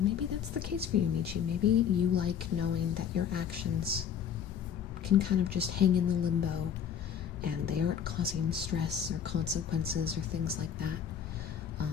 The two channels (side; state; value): right; quieter; 8.3 dB